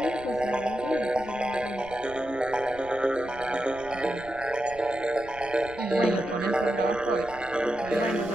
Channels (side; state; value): right; noise; rumble, 20 dB below the sound